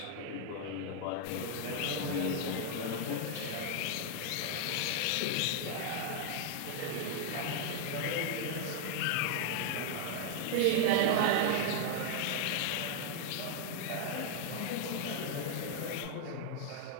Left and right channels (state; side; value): different; both; correlation 0.00